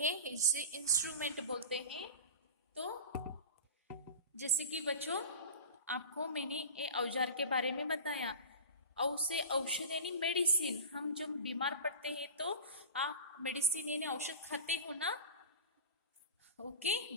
इसे इंस्ट्रूमेंट बोलते हैं। तो जैसे कि बच्चों आपको मैंने ये औजार के बारे में बताया। औ से औषध यानी मेडिसिन, हम जब बीमार पड़ते हैं तो आप मेडिसिन यानी औषध खाते हो ना। ओके,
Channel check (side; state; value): both; inverted; correlation -0.32